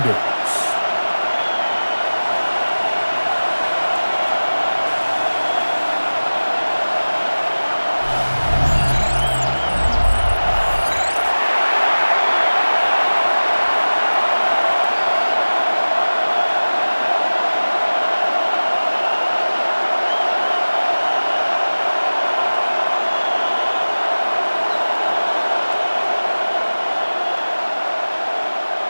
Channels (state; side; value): inverted; both; correlation -1.00